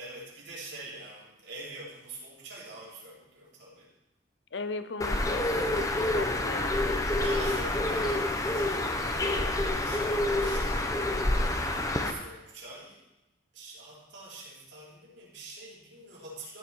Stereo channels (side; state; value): both; normal; correlation 0.52